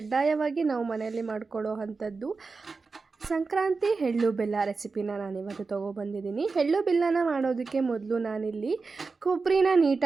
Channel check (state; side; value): quieter; left; 4.3 dB